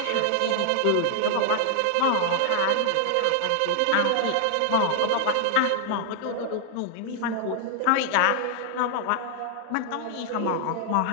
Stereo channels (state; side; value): different; both; correlation 0.00